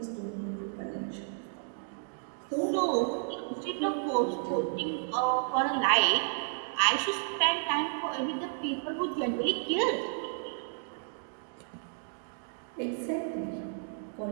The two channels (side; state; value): left; silent; digital silence